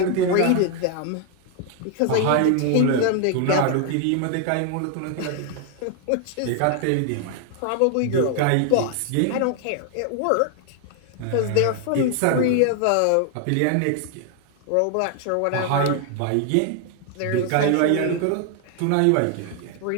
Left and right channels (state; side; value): different; both; correlation 0.00